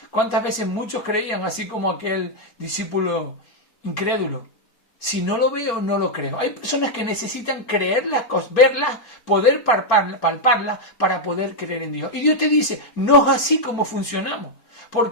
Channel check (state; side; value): late; right; 4.4 ms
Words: ¿Cuántas veces muchos creían, así como aquel discípulo incrédulo? Si no lo veo, no lo creo. Hay personas que necesitan creer las cosas, verlas, poder palparlas para poder creer en Dios. Y Dios te dice, no es así como funcionamos.